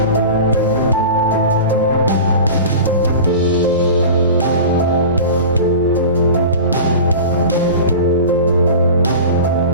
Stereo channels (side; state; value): both; inverted; correlation -0.33